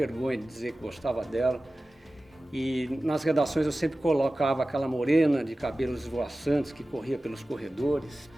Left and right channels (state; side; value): normal; both; correlation 0.96